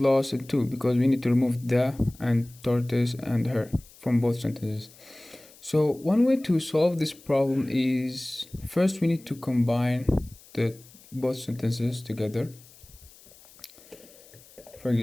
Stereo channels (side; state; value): left; noise; hiss, 24 dB below the sound